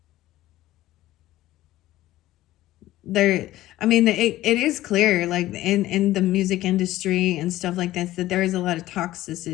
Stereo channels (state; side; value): quieter; right; 15.5 dB